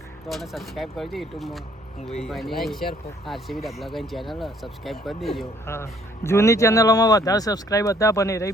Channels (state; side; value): normal; both; correlation 0.62